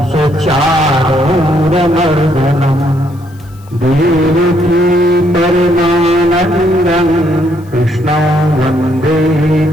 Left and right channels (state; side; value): noise; left; hiss, 29 dB below the sound